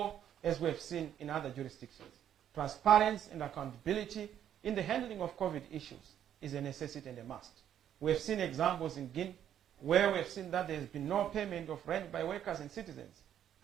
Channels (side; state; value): left; quieter; 10.1 dB